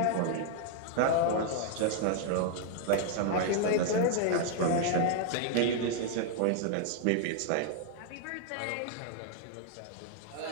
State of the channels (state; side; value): different; both; correlation 0.00